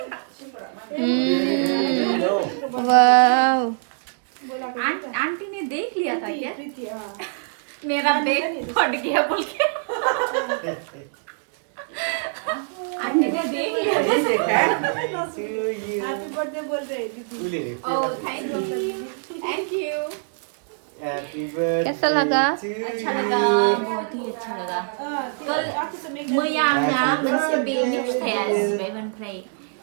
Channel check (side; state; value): left; silent; digital silence